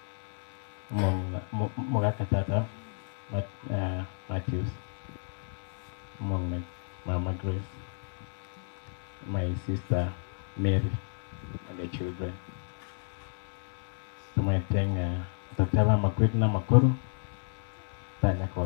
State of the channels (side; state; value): right; silent; 57 dB below the other